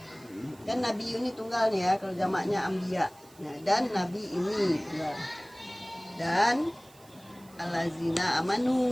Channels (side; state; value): right; noise; hiss, 26 dB below the sound